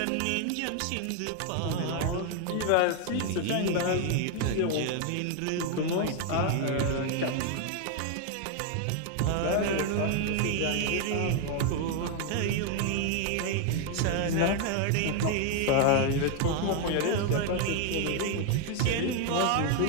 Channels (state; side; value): different; both; correlation 0.01